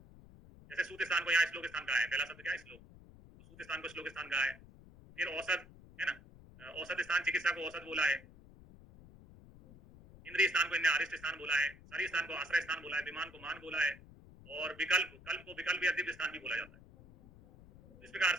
जैसे सूत्र स्थान को यहाँ श्लोक स्थान कहा है, पहला शब्द क्या है, श्लोक, तो सूत्र स्थान को श्लोक स्थान कहा है। फिर औसत, है ना, औसत स्थान चिकित्सा को औसत बोला है। इंद्रिय स्थान को इन्हें अरिष्ट स्थान बोला है, शरीर स्थान को आश्रय स्थान बोला है, विमान को मान बोला है, और विकल्प, कल्प को विकल्प या दिव्य स्थान भी बोला जाता है। इस प्रकार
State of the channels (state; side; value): noise; left; rumble, 20 dB below the sound